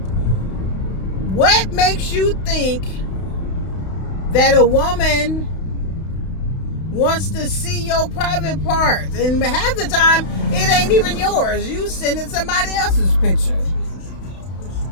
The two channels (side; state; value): right; late; 32 ms